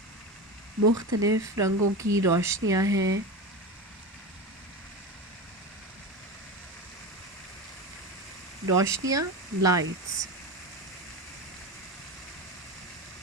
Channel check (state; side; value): normal; both; correlation 0.24